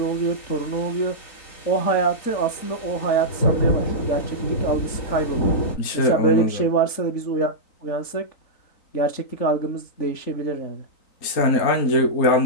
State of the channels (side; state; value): right; late; 3.9 ms